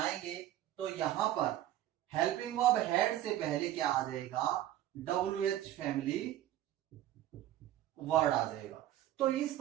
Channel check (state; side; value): quieter; left; 13.1 dB